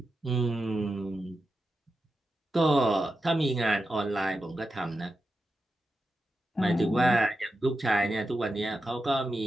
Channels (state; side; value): normal; both; correlation 0.89